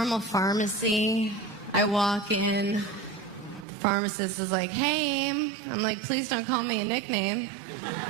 pharmacy. I walk in. The pharmacist is hey. I'm please don't call me a nickname.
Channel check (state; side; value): drops out; left; at 3.7 s